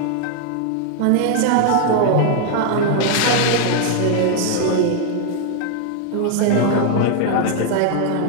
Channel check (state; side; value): different; both; correlation 0.00